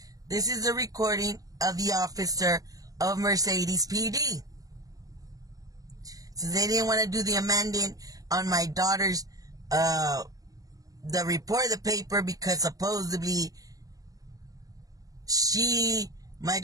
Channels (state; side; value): late; left; 0.17 ms